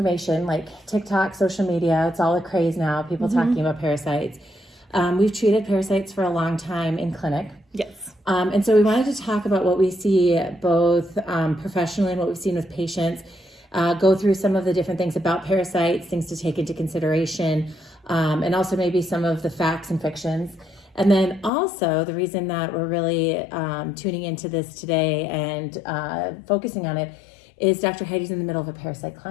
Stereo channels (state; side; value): drops out; right; at 21.5 s